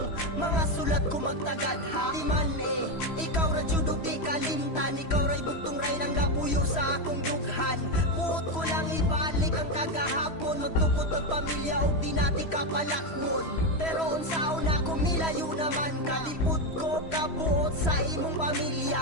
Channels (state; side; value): late; right; 3.0 ms